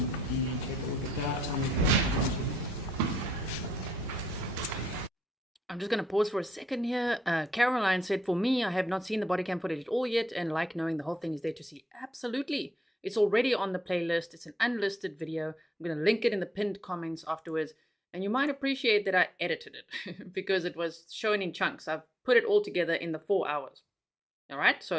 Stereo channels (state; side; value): normal; both; correlation 0.78